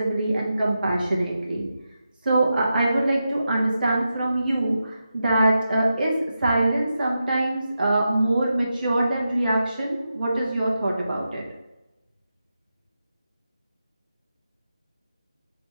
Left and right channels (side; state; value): both; inverted; correlation -0.89